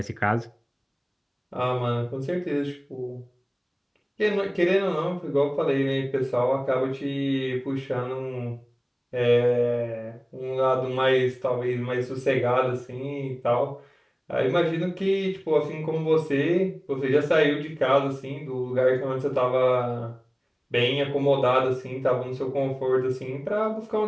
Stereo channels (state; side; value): identical; both; correlation 1.00